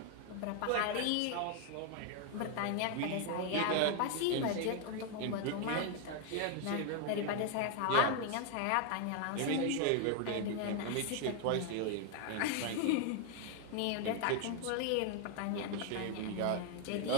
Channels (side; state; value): both; different; correlation 0.00